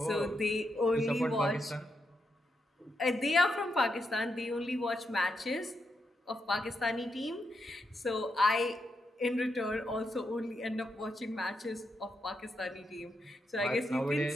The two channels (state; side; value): normal; both; correlation 0.83